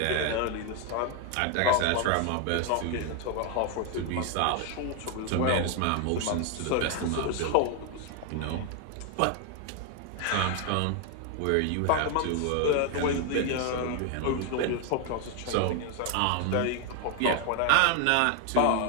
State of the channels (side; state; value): both; different; correlation 0.01